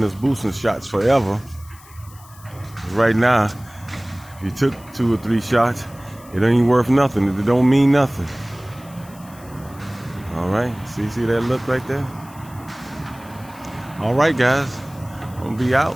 us boosting shots forever. Right now, if you took 2 or 3 shots, it ain't worth nothing. It don't mean nothing. All right. See that look right there? All right, guys. I'm going to be out.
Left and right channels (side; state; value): left; noise; hiss, 23 dB below the sound